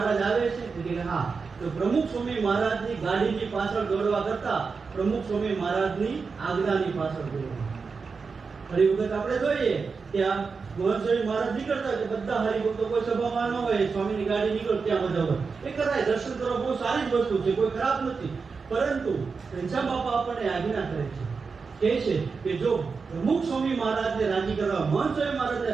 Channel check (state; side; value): quieter; left; 5.0 dB